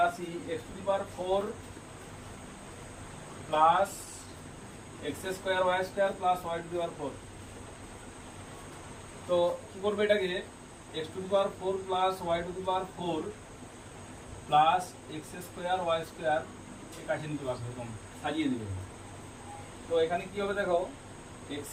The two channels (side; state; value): both; identical; correlation 1.00